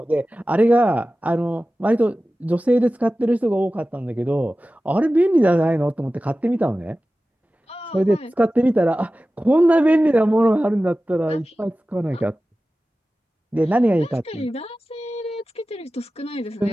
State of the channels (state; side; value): normal; both; correlation 0.96